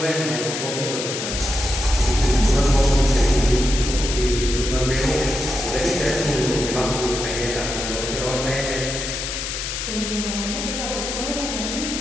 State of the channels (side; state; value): left; noise; hiss, 4 dB below the sound